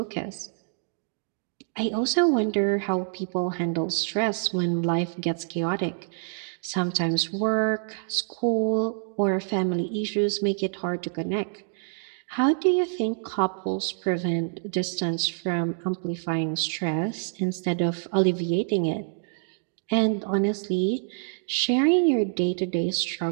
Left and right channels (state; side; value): silent; left; digital silence